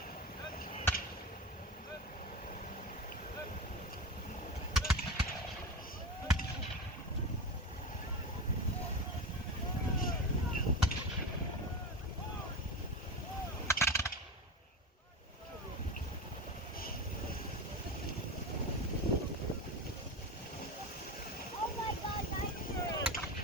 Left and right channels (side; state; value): both; normal; correlation 0.23